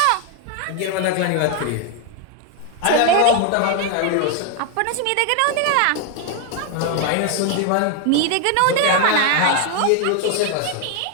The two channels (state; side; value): different; both; correlation 0.00